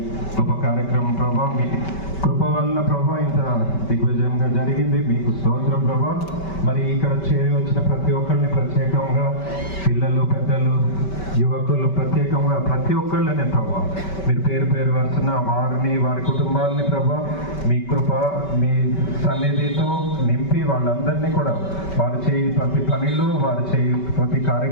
గొప్ప కార్యక్రమం ప్రభా మీ కృప వలన ప్రభా ఇంత దిగ్విజయంగా జరిగింది. మీకు స్తోత్రం ప్రభా. మరి ఇక్కడ చేరి వచ్చిన ప్రతి ఒక్కరిని ప్రత్యేకంగా పిల్లలు, పెద్దలు, యువకులు ప్రత్యేకంగా ప్రతి ఒక్కళ్ళనే ప్రభా మీరు పేరు పేరు వరుసన వారిని, వారి కుటుంబాలని ప్రభా మీ కృప, మీ సన్నిధితో నింపి వాళ్ళందరినీ కూడా వారు చేయి ప్రతి పనిలో, వారు చేయి ప్రతి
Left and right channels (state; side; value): late; right; 5.2 ms